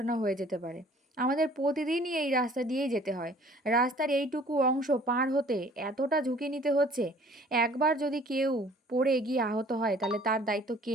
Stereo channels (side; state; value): both; normal; correlation 0.53